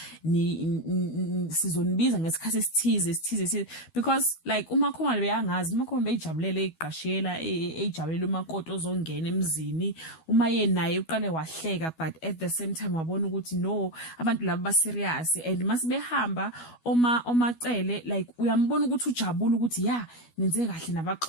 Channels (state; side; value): late; right; 12 ms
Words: sizonibiza ngesikhathi esithize, because like umakhomalo beyangazi, umakhomalo beyijabulele iqashiyela ejabulela umakoti ozongena emzini, uma yena naye uqale wahleka, but at the same time wabona ukuthi no, abantu laba ba serious, and masibehamba omacele like uyambona ukuthi ujabula ukuthi nenze kahle